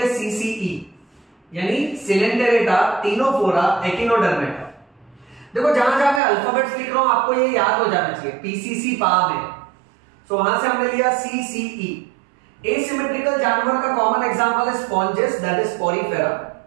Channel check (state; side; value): drops out; left; at 6.2 s